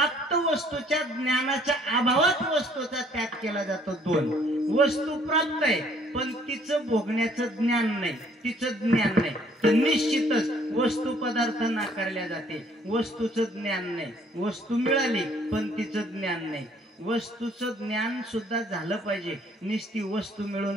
वस्तूच्या ज्ञानाच्या अभावात वस्तूचा त्याग केला जातो. 2. वस्तू प्राप्त आहे पण तिचं भोगण्याचं ज्ञान नाही, तिचं ज्ञान नाही, तर निश्चितच वस्तू पदार्थ नाकारल्या जाते. वस्तूचं ज्ञान नाही. वस्तू मिळाली पण तिचं ज्ञान नाही. वस्तूचं ज्ञान सुद्धा झालं पाहिजे. नुसती वस्तू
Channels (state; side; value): normal; both; correlation 0.61